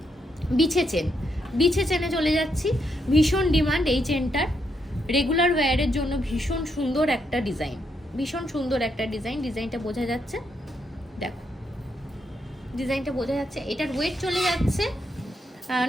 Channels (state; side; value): normal; both; correlation 0.78